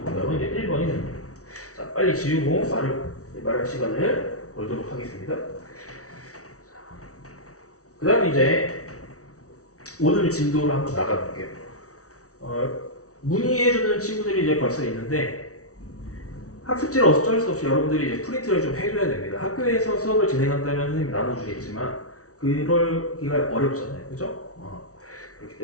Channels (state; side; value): late; right; 0.65 ms